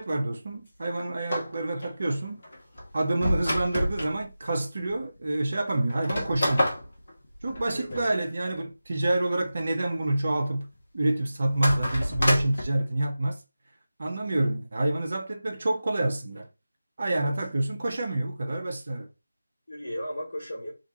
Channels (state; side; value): inverted; both; correlation -0.94